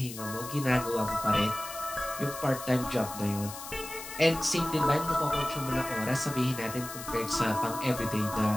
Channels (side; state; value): left; noise; hiss, 11 dB below the sound